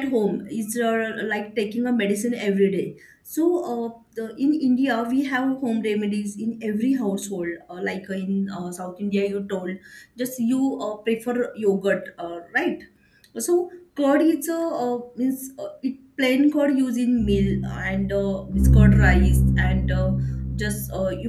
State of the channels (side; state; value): both; identical; correlation 1.00